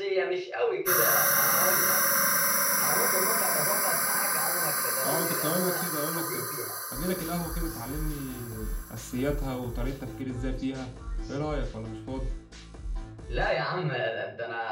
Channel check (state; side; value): identical; both; correlation 1.00